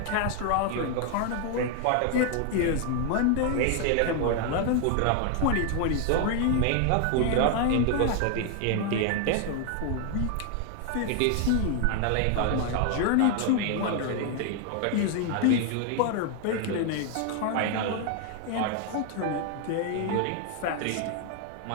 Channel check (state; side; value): different; both; correlation 0.00